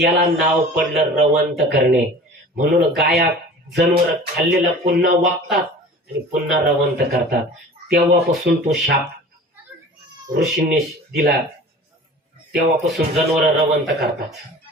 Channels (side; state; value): both; normal; correlation 0.41